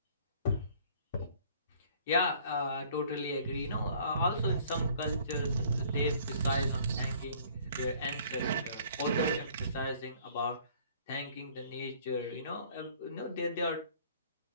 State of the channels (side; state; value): both; inverted; correlation -0.55